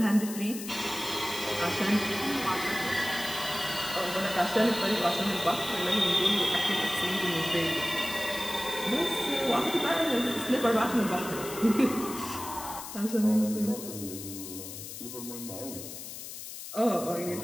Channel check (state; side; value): noise; left; hiss, 10 dB below the sound